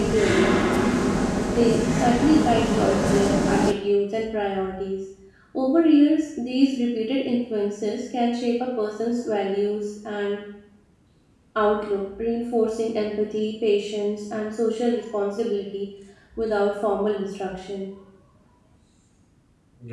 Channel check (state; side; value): identical; both; correlation 1.00